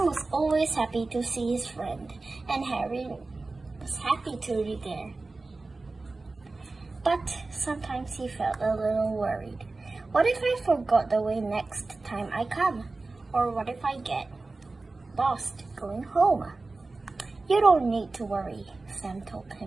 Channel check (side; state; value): left; quieter; 3.5 dB